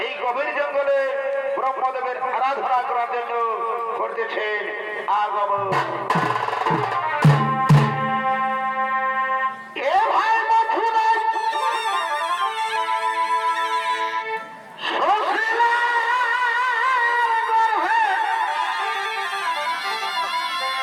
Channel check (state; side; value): identical; both; correlation 1.00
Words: এই গভীর জঙ্গলে ব্রহ্মদেবের আরাধনা করার জন্য করতেছেন আগমন। এ ভাই মথুরায়